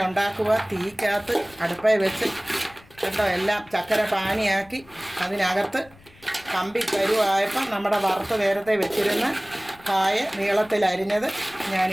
ഉണ്ടാക്കുക. തീക്കകത്ത് അടുപ്പയിൽ വെച്ച് കേട്ടോ എല്ലാം ചക്കര പാനിയാക്കി അതിനകത്ത് കമ്പി കരുവായപ്പം നമ്മുടെ വറുത്ത് നേരത്തെ വെച്ചിരുന്ന കായ നീളത്തിൽ അരിഞ്ഞത്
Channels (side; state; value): left; noise; rumble, 26 dB below the sound